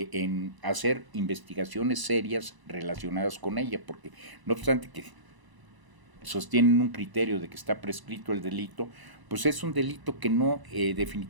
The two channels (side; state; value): left; late; 1.0 ms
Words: hacer investigaciones serias relacionadas con ella, porque no obstante que sostienen un criterio de que está prescrito el delito, pues es un delito que no,